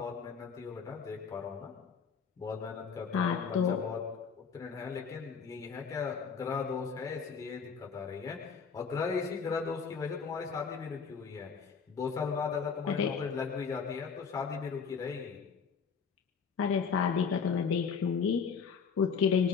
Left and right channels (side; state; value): right; quieter; 6.0 dB